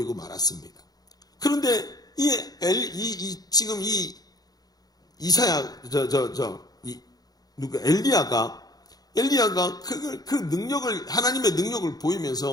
말았습니다. 그런데 지금 엘리야가 그 능력을, 하나님의 능력을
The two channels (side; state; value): right; late; 0.19 ms